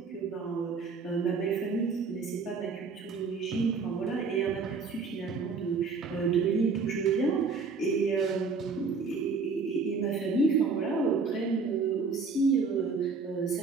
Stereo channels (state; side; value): quieter; left; 4.7 dB